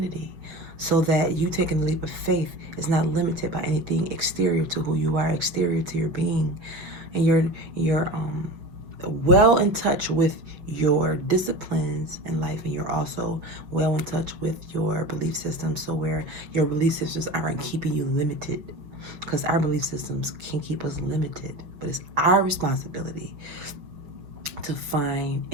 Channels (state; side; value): late; left; 5.9 ms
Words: so that you taking the leap of faith is not limited by anything exterior to who you are, exterior to your being. And you're well in touch with your disciplines in life, and you're also well in touch with your belief system, so where your belief systems aren't keeping you limited, because our belief systems can keep us limited, but it's our responsibility to find